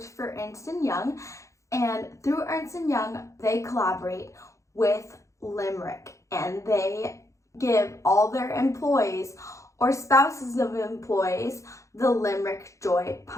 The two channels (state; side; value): late; right; 0.15 ms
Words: for Ernst and Young, and through Ernst and Young they collaborate with Limerick and they give all their employees or spouses of employees the Limerick Joy